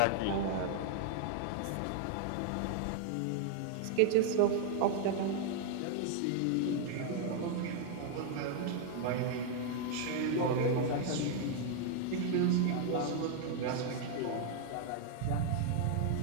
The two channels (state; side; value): different; both; correlation 0.00